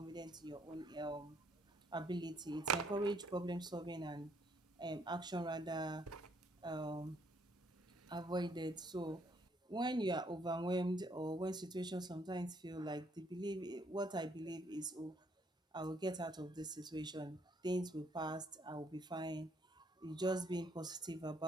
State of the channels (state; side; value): normal; both; correlation 0.68